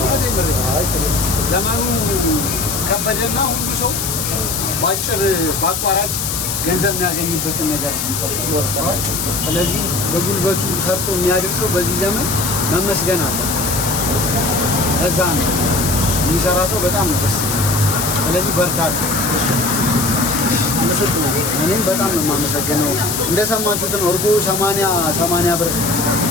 ነው። ዘመኑ ከበደና ሁሉ ሰው ባጭር ባቋራጭ ገንዘብ የሚያገኝበትን ነገር ይወስዳል። ስለዚህ በጉልበቱ ሰርቶ የሚያድር ሰው በዚህ ዘመን መመስገን አለበት። እዛ ነው የሚሰራ ሰው በጣም ነው ደስ ይላል። ስለዚህ በርታ። እኔም በጣም ነው የማመሰግነው። እንደሰማችሁት ነው እርጎ 80 ብር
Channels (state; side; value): noise; left; hiss, 2 dB below the sound